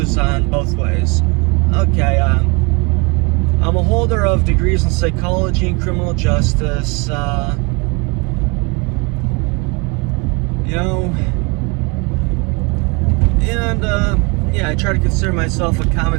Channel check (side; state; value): left; quieter; 29.1 dB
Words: on both ways. Okay, I'm a holder of degrees in psychology and criminal justice. I try to consider myself a